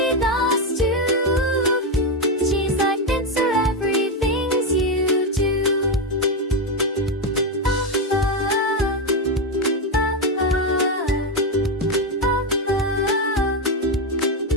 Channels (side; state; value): both; normal; correlation 0.08